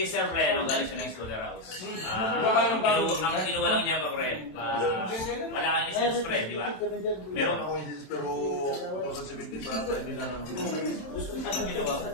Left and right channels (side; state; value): right; late; 27 ms